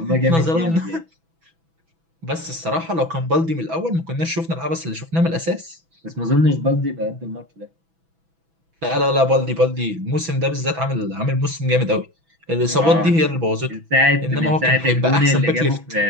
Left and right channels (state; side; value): late; left; 6.1 ms